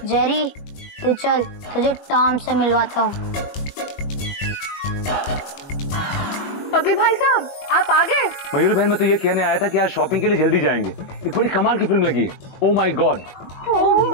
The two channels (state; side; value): late; right; 21 ms